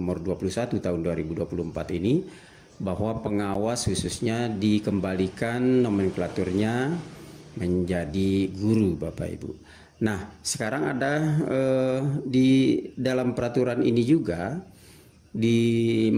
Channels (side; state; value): both; identical; correlation 1.00